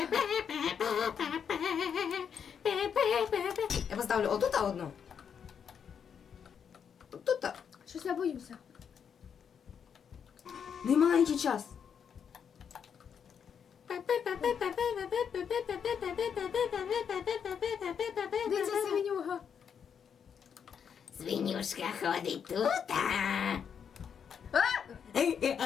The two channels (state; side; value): quieter; right; 7.4 dB